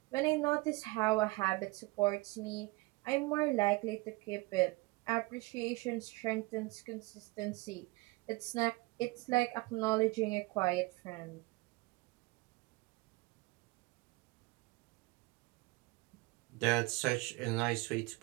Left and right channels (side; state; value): left; quieter; 23.4 dB